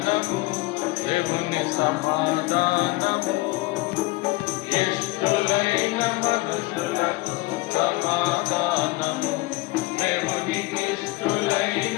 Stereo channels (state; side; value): quieter; right; 21.7 dB